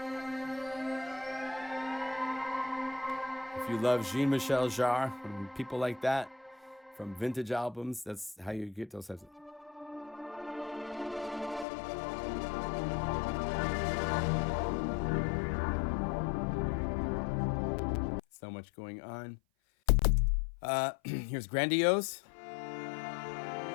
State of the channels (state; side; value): drops out; right; at 11.7 s